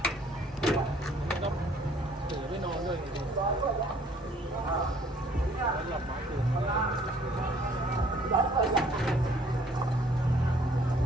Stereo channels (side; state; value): both; normal; correlation 0.59